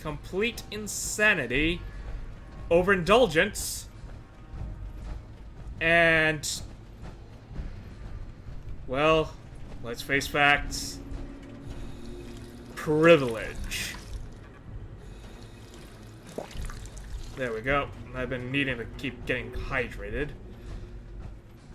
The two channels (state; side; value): identical; both; correlation 1.00